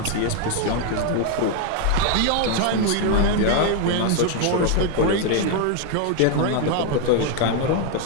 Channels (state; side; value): different; both; correlation 0.01